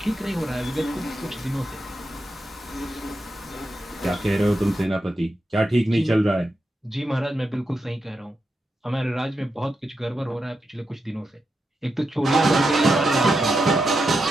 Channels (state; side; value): normal; both; correlation 0.86